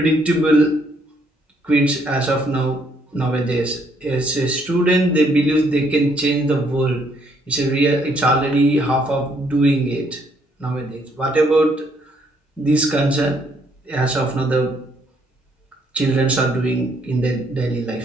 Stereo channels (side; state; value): both; normal; correlation 0.69